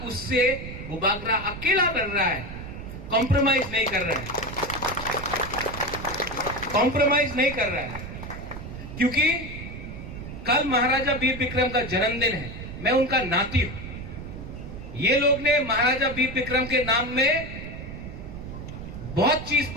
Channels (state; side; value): noise; right; rumble, 10 dB below the sound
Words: उससे बुबागरा अकेला लड़ रहा है, कॉम्प्रोमाइज नहीं कर रहा है, कॉम्प्रोमाइज नहीं कर रहा है, क्योंकि कल महाराजा वीर विक्रम का जन्मदिन है, मैं उनका नाती हूं। ये लोग ने महाराजा वीर विक्रम के नाम में बहुत चीज